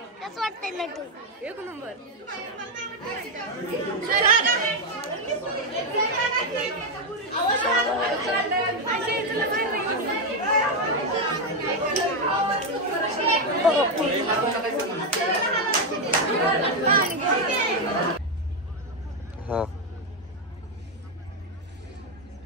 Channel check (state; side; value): normal; both; correlation 0.05